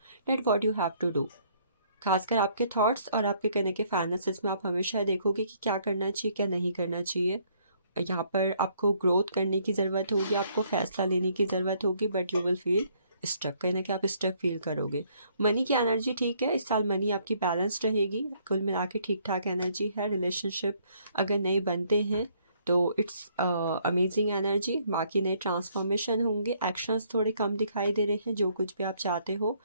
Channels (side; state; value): both; inverted; correlation -0.66